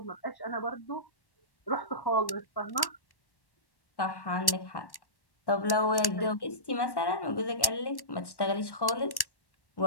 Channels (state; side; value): late; right; 1.1 ms